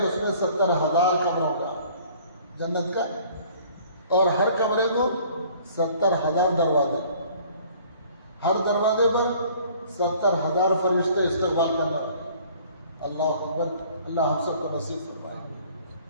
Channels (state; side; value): inverted; both; correlation -0.54